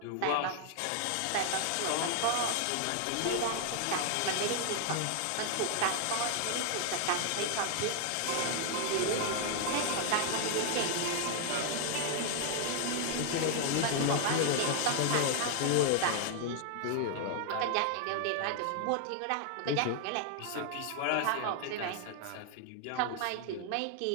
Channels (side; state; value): both; different; correlation 0.00